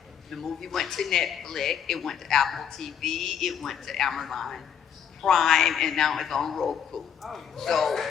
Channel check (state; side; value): quieter; right; 8.1 dB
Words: The movie went to Netflix, it went to Apple TV, it went to Amazon Prime, and now it's on Roku. So